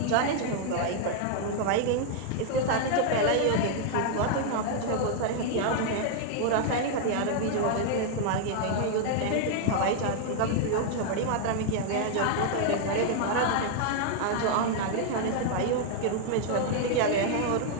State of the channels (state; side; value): different; both; correlation 0.00